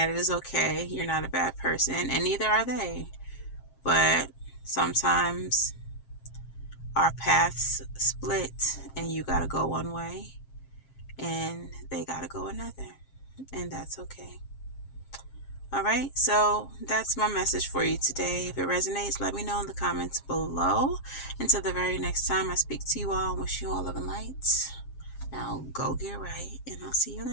it is okay. You're not a bad person, and neither are they. But sometimes our paths split, and you got to go one way, and they got to go another. And that's okay. All right, so that's my message for you today. If it resonates, let me know in the comments below. Until the very next time I speak to you all, wish you all love and light. Now go get right, and I'll see you in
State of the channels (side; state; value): right; late; 7.4 ms